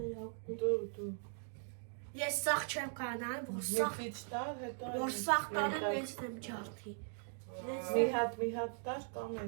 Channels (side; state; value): left; silent; 51 dB below the other